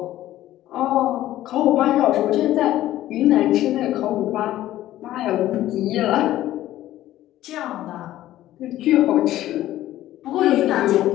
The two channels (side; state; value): right; quieter; 14.1 dB